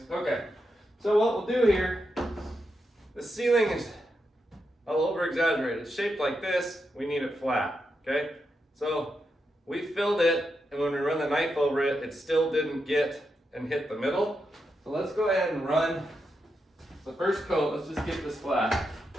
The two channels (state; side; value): normal; both; correlation 0.85